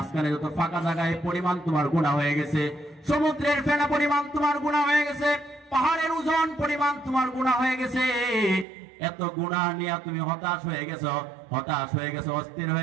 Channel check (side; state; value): left; drops out; at 8.7 s